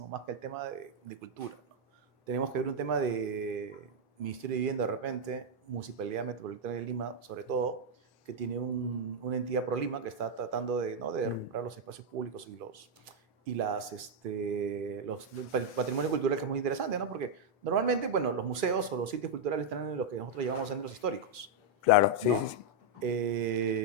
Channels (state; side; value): normal; both; correlation -0.02